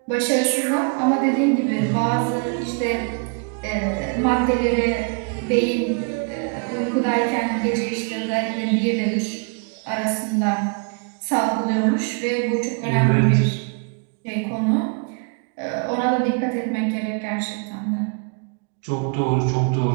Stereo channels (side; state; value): left; quieter; 37.1 dB